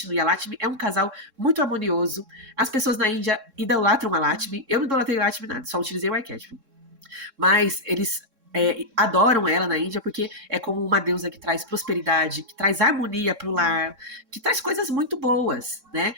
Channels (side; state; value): left; late; 3.6 ms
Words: e a Lakshmi é um casal muito harmonioso. As pessoas na Índia idolatram a Lakshmi. Eu não idolatrei a Lakshmi nada, só utilizei o arquétipo. Mas eles adoram ela na Índia porque é como uma deusa que traz prosperidade, que traz harmonia pro lar, que traz coisas muito boas, né?